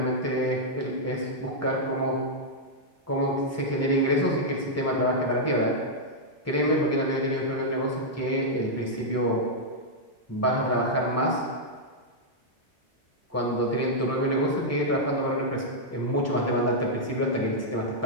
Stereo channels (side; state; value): both; normal; correlation -0.06